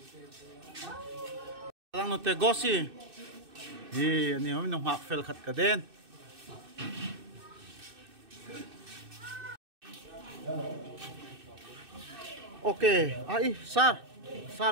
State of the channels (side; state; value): left; late; 2.6 ms